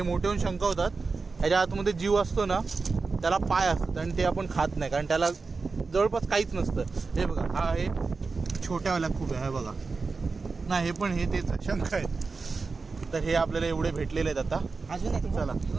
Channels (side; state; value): left; quieter; 4.3 dB